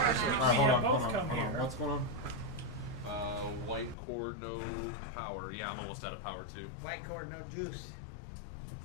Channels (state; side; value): drops out; right; at 4.0 s